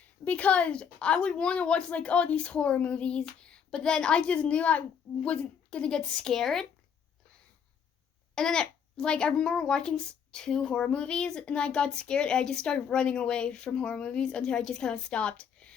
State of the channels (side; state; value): right; quieter; 7.3 dB